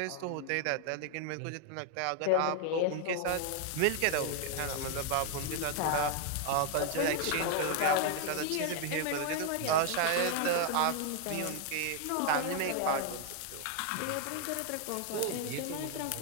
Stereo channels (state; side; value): different; both; correlation 0.00